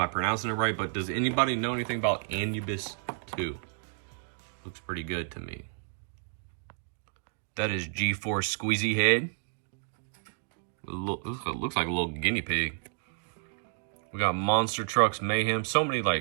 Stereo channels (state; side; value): silent; left; digital silence